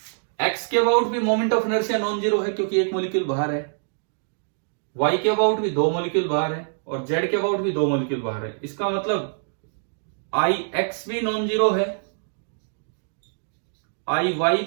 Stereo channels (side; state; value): left; silent; digital silence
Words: एक्स के अबाउट भी moment of inertia non zero है क्योंकि एक मॉलिक्यूल बाहर है, वाई के अबाउट भी 2 मॉलिक्यूल बाहर है, और जेड के अबाउट भी 2 मॉलिक्यूल बाहर है। इसका मतलब आई एक्स भी नॉन जीरो है, आई वाई